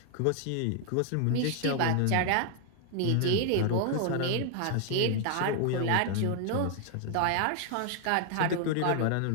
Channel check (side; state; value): both; different; correlation 0.00